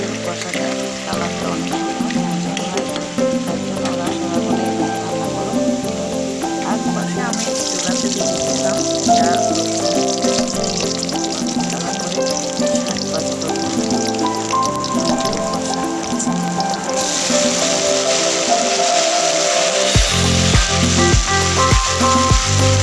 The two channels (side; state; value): both; identical; correlation 1.00